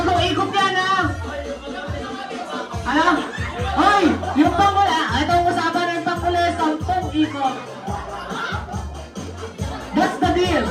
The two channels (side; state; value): both; identical; correlation 1.00